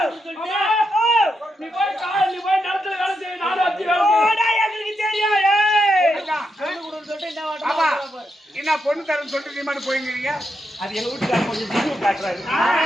நீ போய் நிலத்துல வேலை செய்ய, நானும் வச்சு வேலை செய்ய. எங்களுக்கு தெரியும். ஏய். ஆமா என்ன பொண்ணு தரேன்னு சொல்லிட்டு நீ மட்டும் போய்ங்கிறீங்க அது எங்க வீட்டுக்காரர் கொஞ்சம் விசுவு காட்டுறாரு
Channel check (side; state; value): both; normal; correlation 0.84